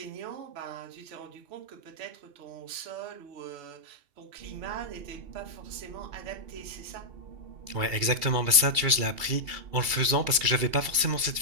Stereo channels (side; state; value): left; late; 2.8 ms